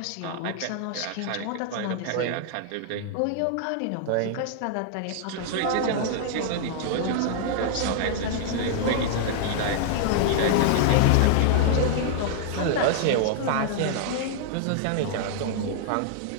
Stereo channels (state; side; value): different; both; correlation -0.01